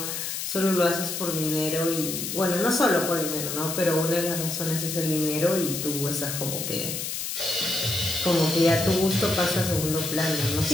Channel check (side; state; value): left; noise; hiss, 4 dB below the sound